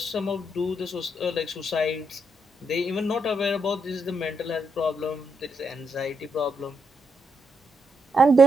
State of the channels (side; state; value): both; normal; correlation 0.79